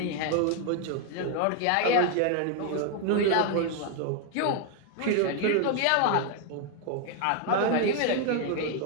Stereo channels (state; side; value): different; both; correlation 0.00